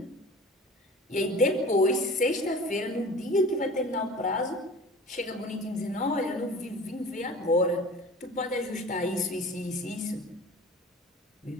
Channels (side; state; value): both; normal; correlation 0.41